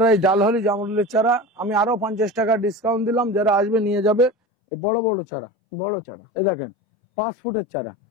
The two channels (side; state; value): right; drops out; at 4.3 s